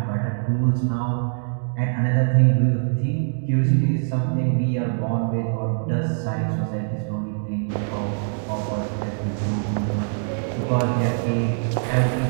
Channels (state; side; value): silent; left; digital silence